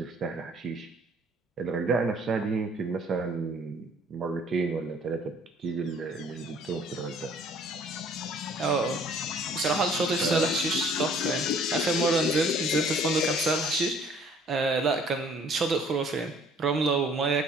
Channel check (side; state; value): both; normal; correlation 0.57